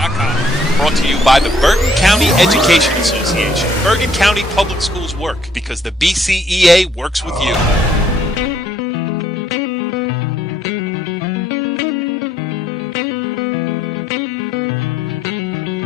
Brought to you by the Bergen County Education Association. Bergen County Public Schools work because the BCEA works with you.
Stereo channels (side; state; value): both; normal; correlation 0.67